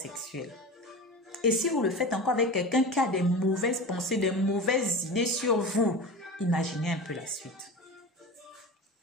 Et si vous le faites encore avec quelqu'un qui a des mauvaises pensées, des mauvaises idées sur vous, imaginez un peu la suite.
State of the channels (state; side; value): normal; both; correlation 0.30